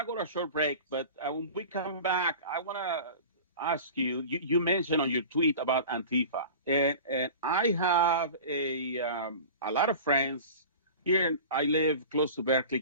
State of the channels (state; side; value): inverted; both; correlation -0.37